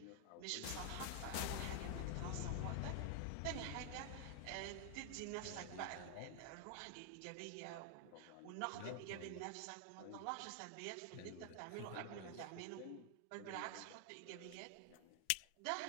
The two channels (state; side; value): different; both; correlation 0.00